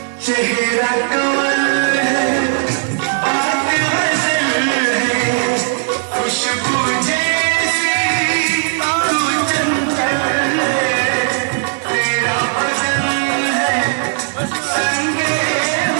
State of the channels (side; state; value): left; silent; 57 dB below the other